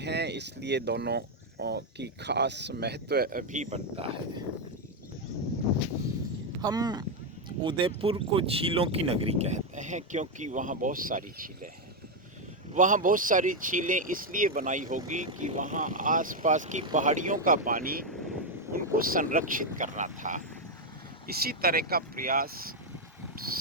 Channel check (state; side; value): normal; both; correlation 0.04